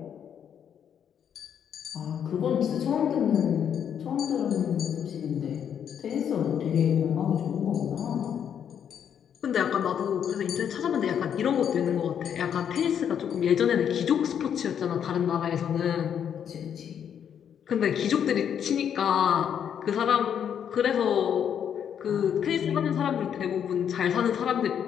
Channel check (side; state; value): right; quieter; 8.5 dB